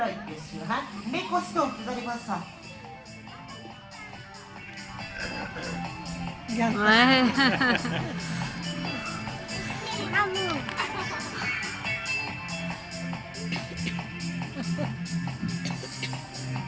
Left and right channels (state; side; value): identical; both; correlation 1.00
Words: bien sûr, hein, mais costaud, vous allez voir ça. Ouais.